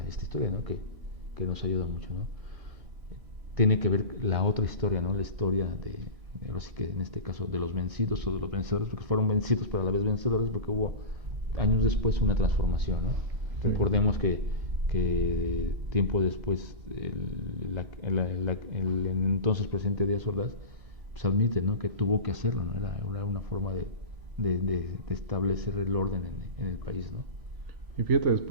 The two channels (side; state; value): left; late; 1.6 ms